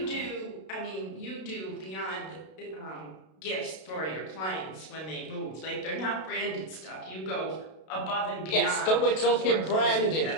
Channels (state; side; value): late; right; 32 ms